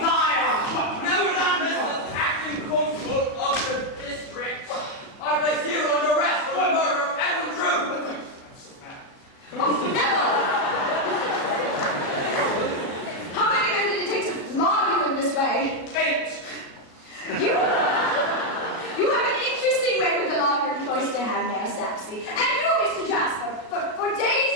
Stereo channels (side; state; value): right; late; 37 ms